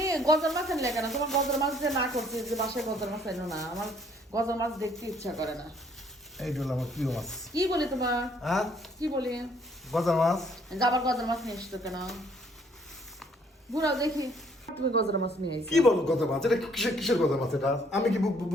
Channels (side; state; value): both; normal; correlation 0.63